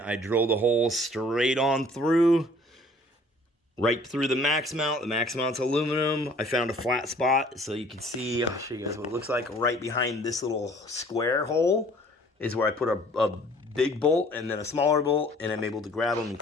drilled a hole straight on through, right through the max mount. The max mount's aluminum. I found a flat spot so you can see, I'll show you guys what it looks like. Right behind this little square hole is where I put a big bolt and then a smaller bolt, and I'm able to grab them and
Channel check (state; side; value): normal; both; correlation 0.54